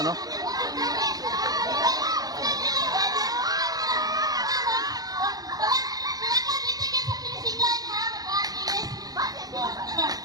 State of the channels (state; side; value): late; left; 0.18 ms